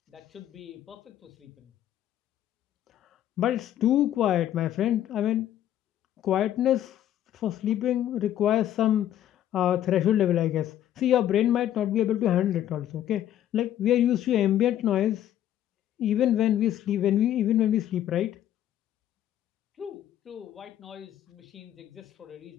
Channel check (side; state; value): right; quieter; 11.6 dB